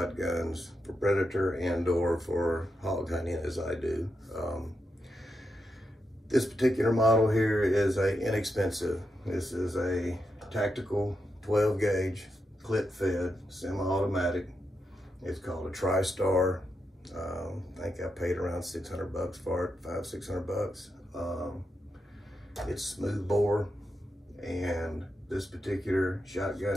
for predator and or for hog hunting as I do. This particular model here is inexpensive. This is a tactical 12 gauge clip fed semi-automatic. It's called a TriStar. I think I paid around $600 for it, $500–600. It's smooth bore, and this particular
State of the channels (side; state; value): both; normal; correlation 0.85